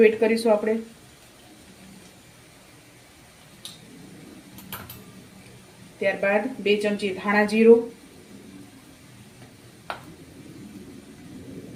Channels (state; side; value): identical; both; correlation 1.00